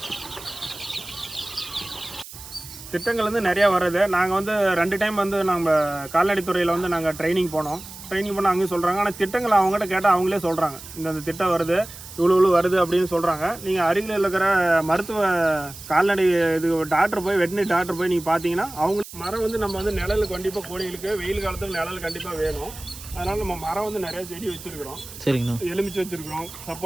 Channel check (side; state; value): right; noise; hiss, 15 dB below the sound